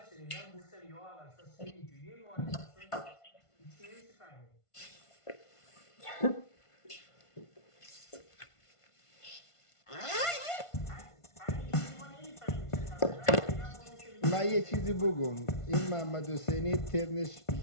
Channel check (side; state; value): right; late; 1.5 ms